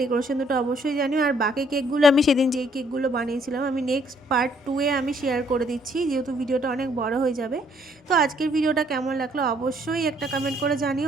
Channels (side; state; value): both; normal; correlation 0.66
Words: ডেকোরেশন দুটো অবশ্যই জানিও। আর বাকি কেকগুলো আমি সেদিন যেই কেকগুলো বানিয়েছিলাম আমি নেক্সট পার্ট 2-এ আমি শেয়ার করে দিচ্ছি, যেহেতু ভিডিওটা অনেক বড় হয়ে যাবে। তো আজকের ভিডিওটা কেমন লাগলো অবশ্যই একটা কমেন্ট করে জানিও,